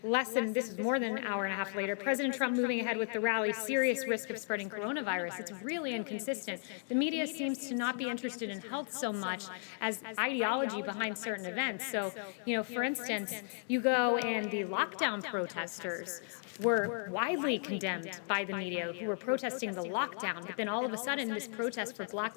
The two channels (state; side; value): silent; right; 54 dB below the other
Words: this is more than an hour and a half later, President Trump moving ahead with the rally, serious risk of spreading coronavirus. It's really inconsistent. The media seems to not be interested in health so much as ideology behind certain events. So, for instance, you go and the lockdown protesters were widely condemned by the media who were protesting the lockdown, but then all of a sudden this protest for Black